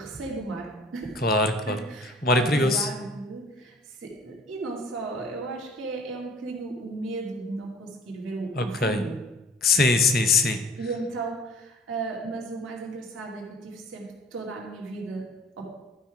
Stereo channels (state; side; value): normal; both; correlation 0.50